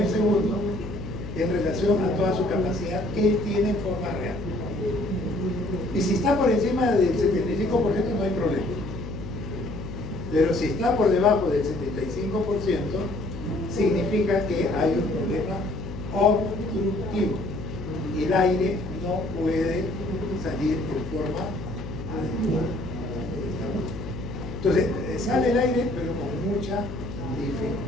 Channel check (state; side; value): noise; left; hum, 9 dB below the sound